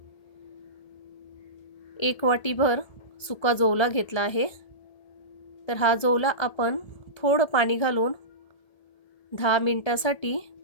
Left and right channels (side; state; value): right; late; 1.3 ms